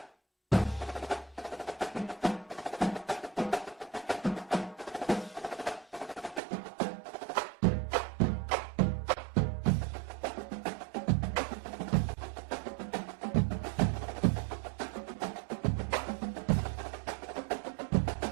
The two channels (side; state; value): left; drops out; at 6.4 s